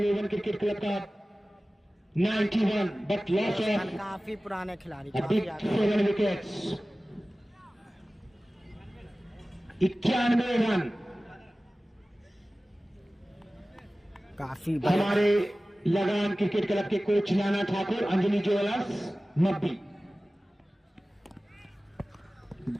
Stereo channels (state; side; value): normal; both; correlation 0.97